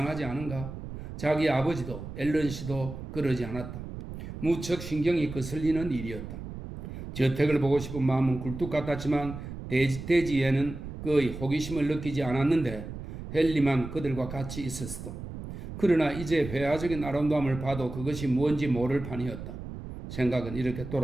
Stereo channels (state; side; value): noise; right; rumble, 10 dB below the sound